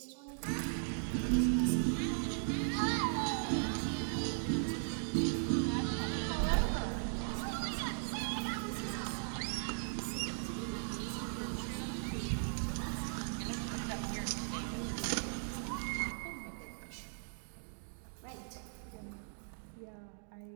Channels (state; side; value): silent; left; digital silence